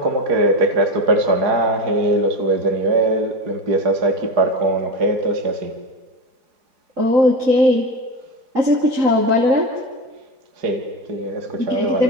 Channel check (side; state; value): left; late; 4.0 ms